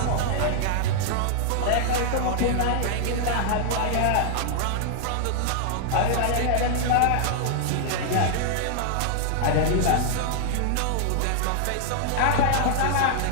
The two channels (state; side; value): different; both; correlation -0.01